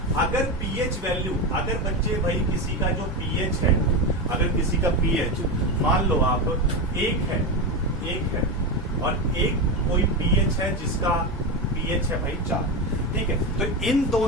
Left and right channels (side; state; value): both; normal; correlation 0.16